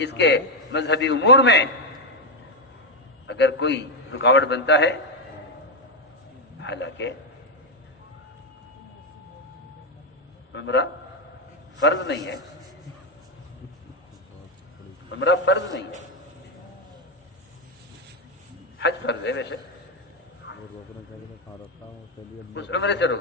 کے مذہبی امور میں اگر کوئی رکاوٹ بنتا ہے، حالانکہ عمرہ فرض نہیں ہے، عمرہ فرض نہیں ہے، حج فرض ہے ویسے، اس عمرے سے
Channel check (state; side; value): normal; both; correlation 0.05